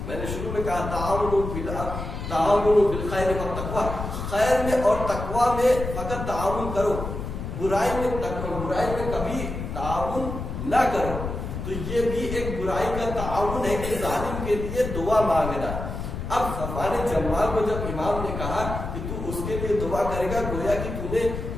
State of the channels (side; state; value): left; noise; rumble, 6 dB below the sound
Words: میں نے شروع میں کہا تعاون بالخیر والتقوی، خیر میں اور تقوی میں فقط تعاون کرو، برائی میں کبھی تعاون نہ کرو. تو یہ بھی ایک برائی کا تعاون ہے کہ ظالم کے لیے دعا مانگنا. اب صفوان جمال کو جب امام نے کہا کہ تو اس کے لیے دعا کرے گا، گویا کہ تو نے